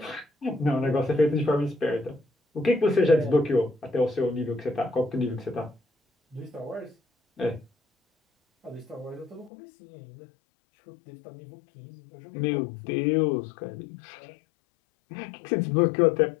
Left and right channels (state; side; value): drops out; right; at 9.5 s